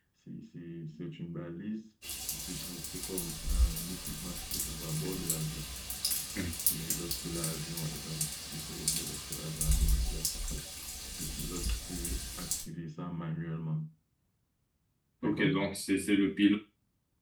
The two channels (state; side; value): identical; both; correlation 1.00